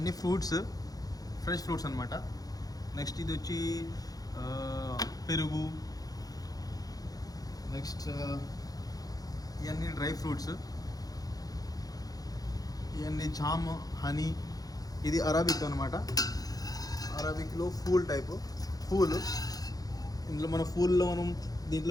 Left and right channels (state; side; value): late; right; 0.18 ms